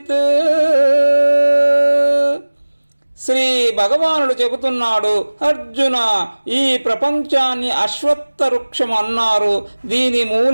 శ్రీ భగవానుడు చెబుతున్నాడు, అర్జున, ఈ ప్రపంచాన్ని అశ్వత్థ వృక్షం అన్నారు. దీని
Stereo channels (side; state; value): both; inverted; correlation -1.00